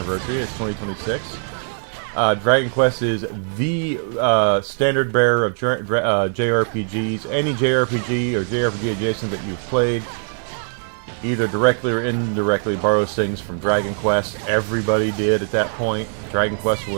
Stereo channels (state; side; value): silent; left; 59 dB below the other